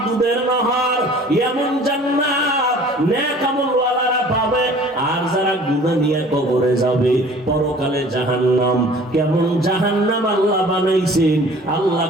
দুধের নহর। এমন জান্নাত নেক আমলওয়ালারা পাবে। আর যারা গুনাহ নিয়ে কবরে যাবে, পরকালে জাহান্নাম। কেমন জাহান্নাম আল্লাহ বানাইছেন, আল্লাহ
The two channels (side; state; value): both; normal; correlation 0.49